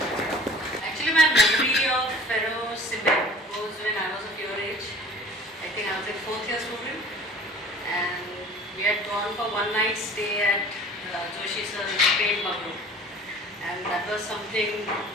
Actually, my memory of Ferrocement was when I was of your age. I think I was a fourth year student, and we had gone for one night stay at Joshi Sir's paint bungalow, and that was something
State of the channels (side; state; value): both; normal; correlation 0.46